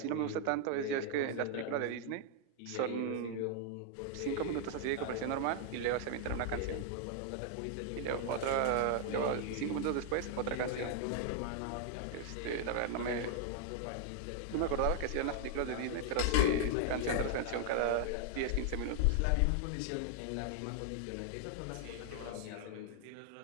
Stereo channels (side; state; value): both; different; correlation 0.00